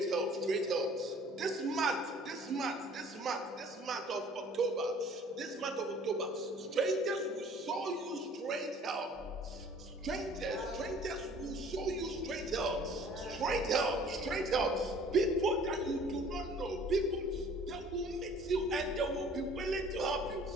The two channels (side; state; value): both; normal; correlation 0.52